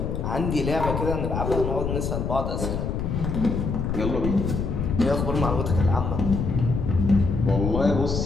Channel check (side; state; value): left; noise; rumble, 2 dB below the sound